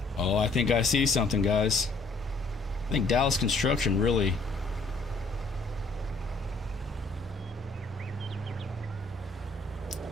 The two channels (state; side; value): quieter; right; 3.3 dB